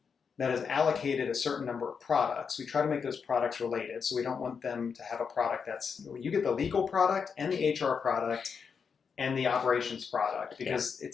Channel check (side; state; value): right; quieter; 6.1 dB